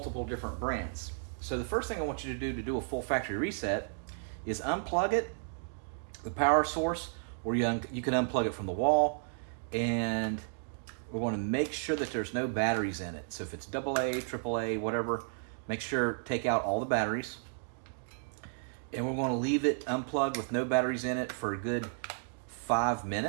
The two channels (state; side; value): silent; left; digital silence